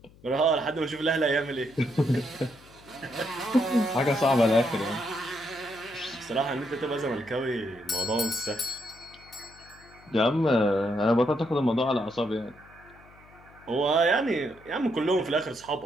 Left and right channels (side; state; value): left; noise; hum, 25 dB below the sound